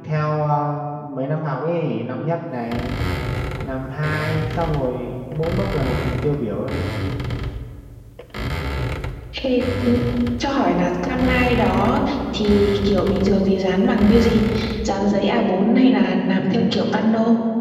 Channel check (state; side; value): identical; both; correlation 1.00